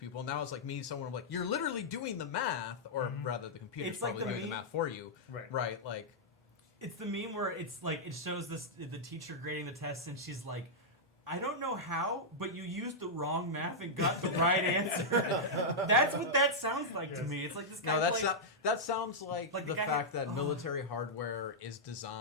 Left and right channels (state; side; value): normal; both; correlation -0.08